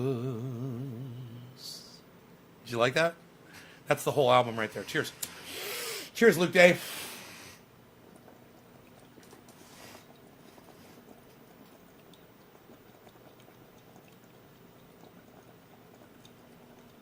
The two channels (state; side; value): identical; both; correlation 1.00